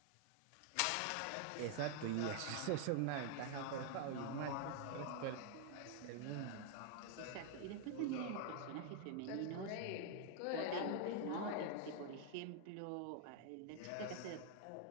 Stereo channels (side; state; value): both; different; correlation 0.00